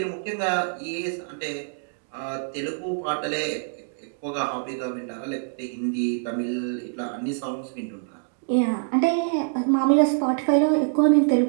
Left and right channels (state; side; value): silent; left; digital silence